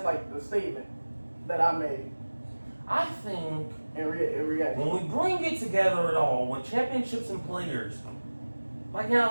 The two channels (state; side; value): inverted; both; correlation -1.00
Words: like, the statement that I made I think in reaction. when we bring it together at all, with championships and players, like